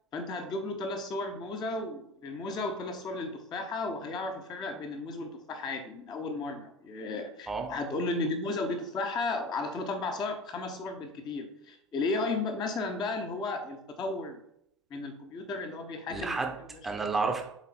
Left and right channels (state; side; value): normal; both; correlation 0.41